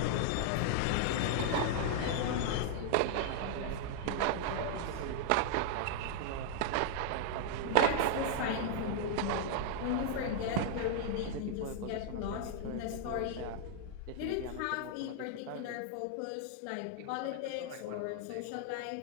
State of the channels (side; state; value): both; different; correlation -0.01